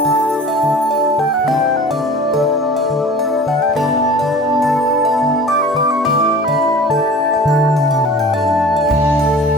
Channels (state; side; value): normal; both; correlation 0.42